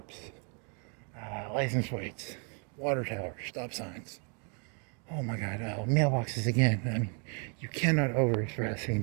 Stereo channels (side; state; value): left; quieter; 38.0 dB